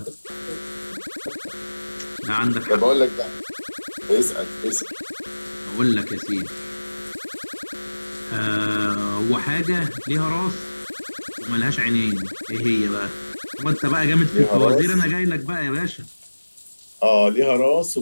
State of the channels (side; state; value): both; inverted; correlation -1.00